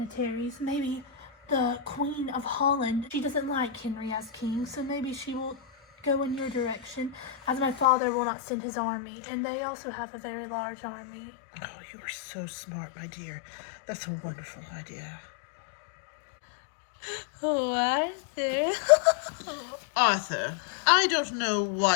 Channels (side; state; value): right; drops out; at 7.9 s